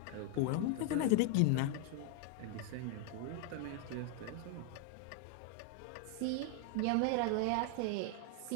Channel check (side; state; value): both; different; correlation 0.00